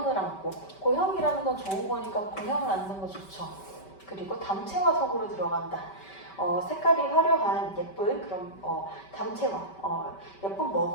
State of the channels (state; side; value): late; right; 5.2 ms